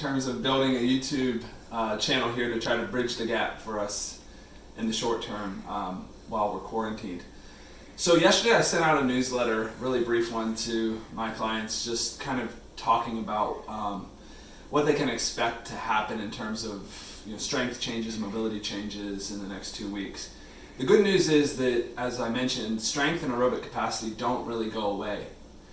of building a YouTube channel here to try to bridge the gap for us in the short term while we're quarantined. So yesterday I sent out a newsletter, really brief one, to my clients, just kind of talking about what they can expect to happen in terms of strength changes, mobility changes in the next 2 weeks. The good news is that, as I mentioned, strength and aerobic capacity don't really go away.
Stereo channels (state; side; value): identical; both; correlation 1.00